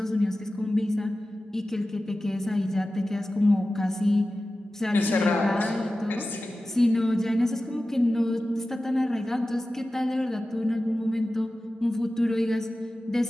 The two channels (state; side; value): normal; both; correlation 0.95